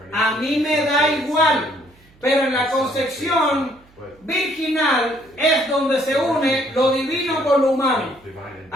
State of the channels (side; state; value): right; noise; hum, 29 dB below the sound